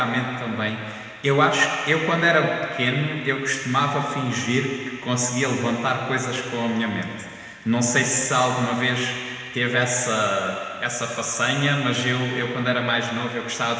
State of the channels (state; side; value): identical; both; correlation 1.00